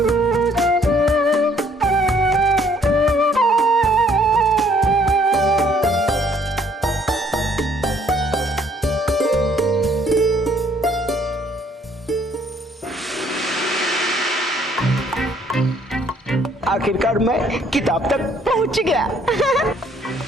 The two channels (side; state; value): both; normal; correlation 0.64